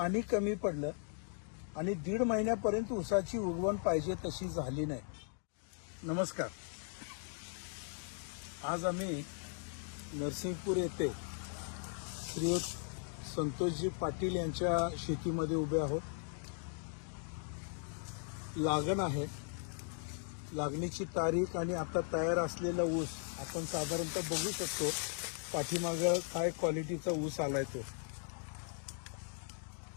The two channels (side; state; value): right; silent; 52 dB below the other